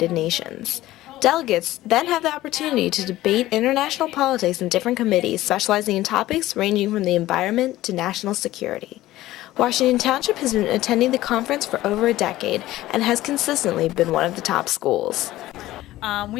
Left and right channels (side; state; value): right; quieter; 15.9 dB